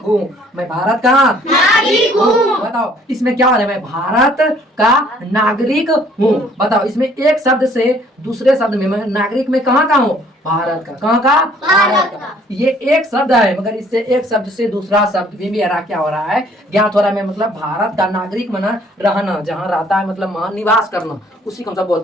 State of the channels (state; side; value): normal; both; correlation 0.59